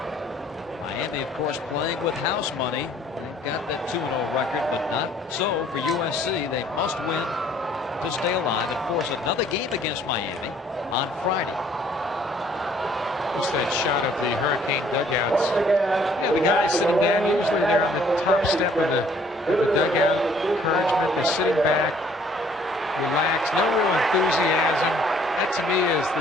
Miami, of course, playing with house money. They've got that 2-0 record, but not so for USC. They must win to stay alive and force another game against Miami on Friday. Just that shot of the Hurricane dugouts. Yeah, the guys sitting down, usually they're on the top step of the dugout. Encouragement, they're sitting back, relaxed, no real enthusiasm. That to me is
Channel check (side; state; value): both; normal; correlation 0.59